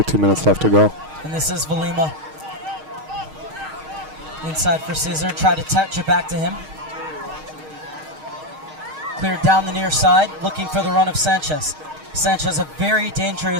minutes left to go. And this is Valima. Inside for Scissor, try to touch it back to him. Cleared down the near side, looking for the run of Sanchez. Sanchez, a very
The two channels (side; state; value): left; late; 6.4 ms